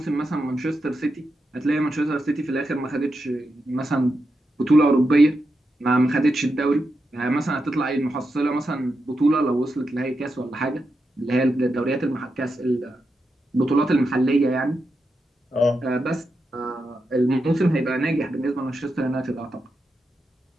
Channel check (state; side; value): normal; both; correlation 0.87